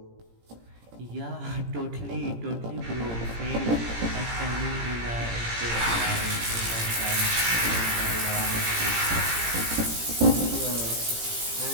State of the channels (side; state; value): left; late; 17 ms